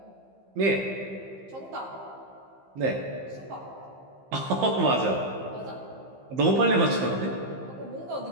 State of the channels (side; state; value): left; late; 15 ms